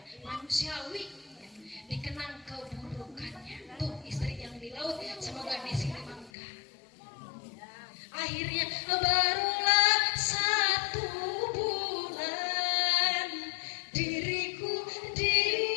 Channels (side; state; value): right; drops out; at 6.3 s